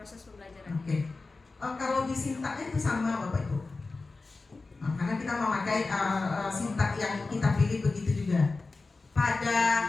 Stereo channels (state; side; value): quieter; right; 3.7 dB